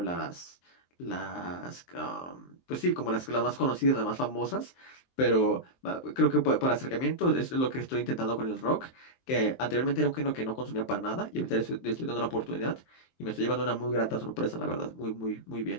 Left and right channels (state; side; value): late; right; 23 ms